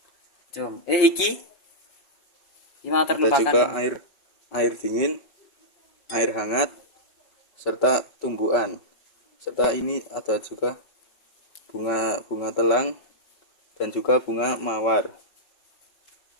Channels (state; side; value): late; right; 5.3 ms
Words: Ada juga air dingin, air hangat, serta tumbuhan. Serta ini ada juga bunga telang dan juga bunga mawar.